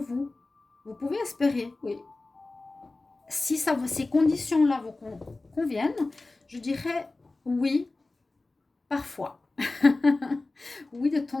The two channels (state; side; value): quieter; right; 3.2 dB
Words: Vous pouvez espérer, oui. Si ces conditions-là vous conviennent, je dirais oui, parfois. Oui, de